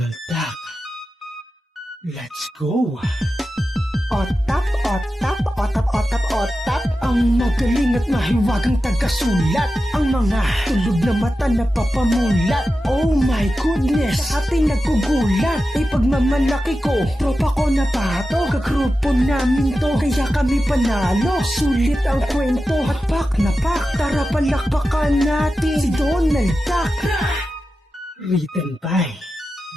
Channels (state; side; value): normal; both; correlation 0.92